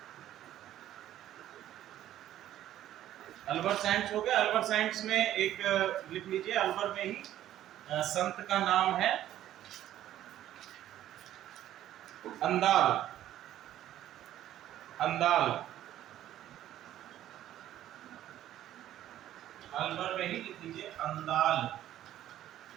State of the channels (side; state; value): left; quieter; 12.6 dB